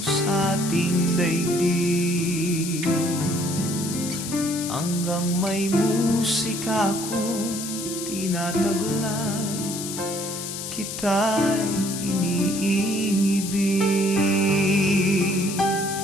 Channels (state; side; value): noise; left; hiss, 7 dB below the sound